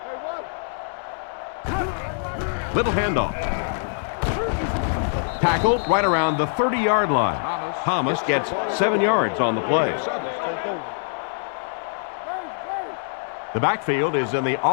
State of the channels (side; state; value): right; silent; 59 dB below the other